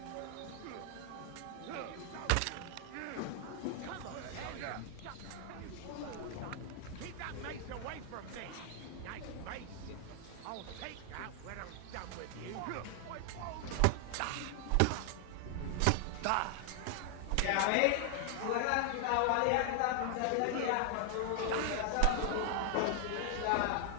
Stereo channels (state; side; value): different; both; correlation 0.00